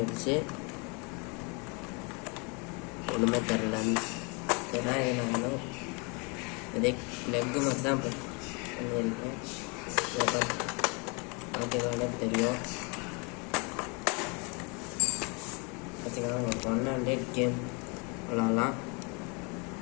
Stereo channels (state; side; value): quieter; right; 31.9 dB